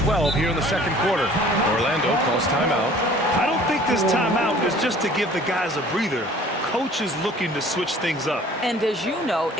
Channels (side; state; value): both; normal; correlation 0.51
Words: 12 here in the second quarter. Orlando calls timeout. I don't think this timeout is just to give the guys a breather. Coach is looking to switch things up. And as you know,